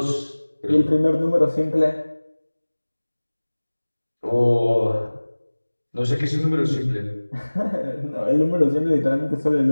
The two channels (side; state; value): both; inverted; correlation -1.00